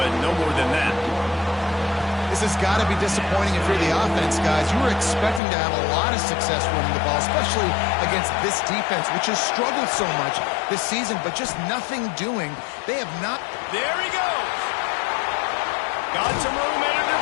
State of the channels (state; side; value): drops out; right; at 5.4 s